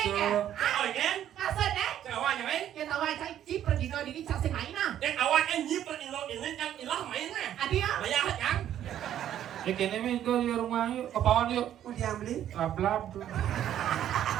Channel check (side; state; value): left; quieter; 11.0 dB